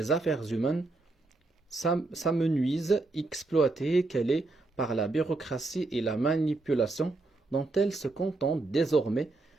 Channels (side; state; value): left; quieter; 3.2 dB